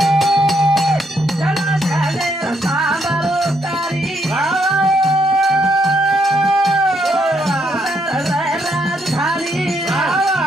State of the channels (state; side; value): normal; both; correlation 0.74